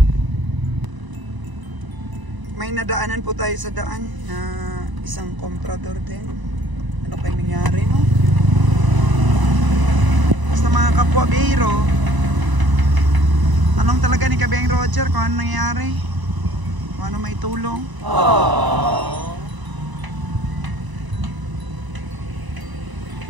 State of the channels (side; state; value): left; late; 1.0 ms